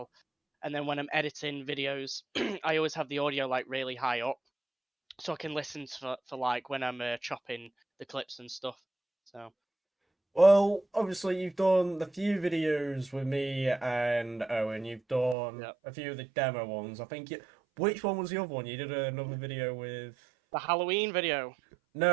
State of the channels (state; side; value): drops out; left; at 15.4 s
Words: And then when I'm editing videos, I always have the audio like really high up, so I can listen for like when I'm chopping the clips and stuff. So Well, obviously you've done the few videos with me and Owen. You've done Yep. a few of the demo ones. I think which one was the other one? You did another video with. the Halloween video.